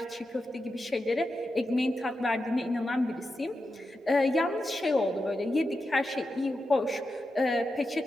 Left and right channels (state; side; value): normal; both; correlation 0.89